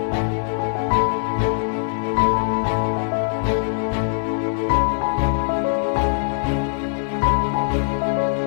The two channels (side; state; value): right; silent; digital silence